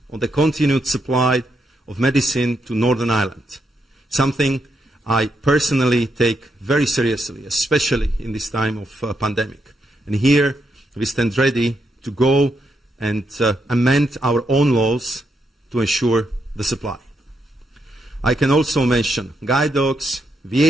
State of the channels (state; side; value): normal; both; correlation 0.80